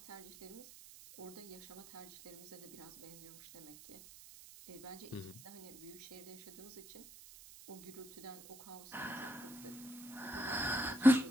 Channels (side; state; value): right; noise; hiss, 16 dB below the sound